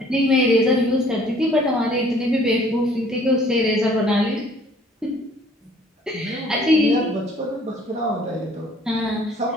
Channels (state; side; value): normal; both; correlation 0.57